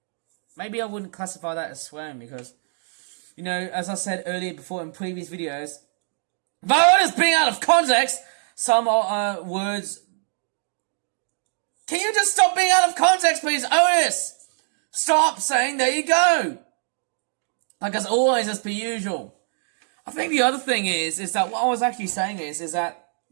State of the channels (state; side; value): silent; left; digital silence